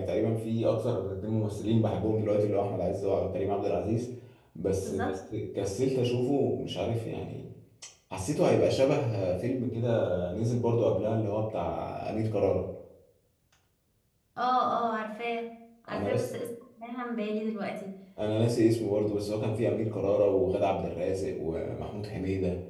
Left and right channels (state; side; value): identical; both; correlation 1.00